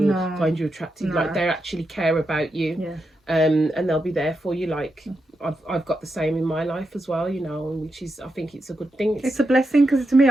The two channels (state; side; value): normal; both; correlation 0.86